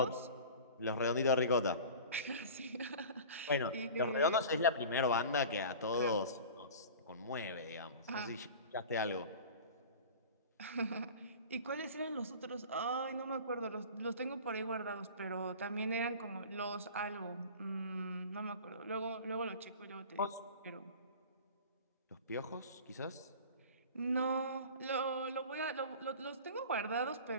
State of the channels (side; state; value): both; inverted; correlation -0.38